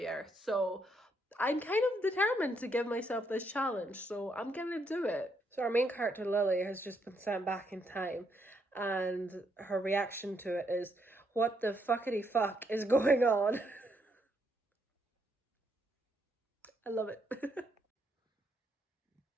So I'm kind of determined to give myself this challenge, so I'm gonna do it. So our main character, Lily, has just been sent back in time, and her reaction to it is, what the fuckity fuck is going on? I love it.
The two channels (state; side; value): normal; both; correlation 0.75